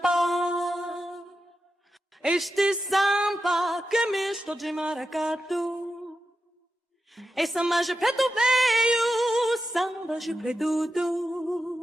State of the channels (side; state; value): both; normal; correlation 0.90